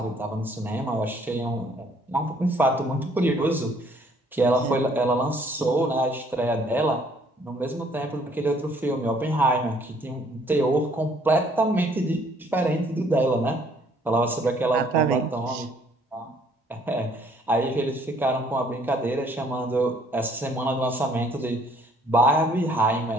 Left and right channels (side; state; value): both; normal; correlation 0.62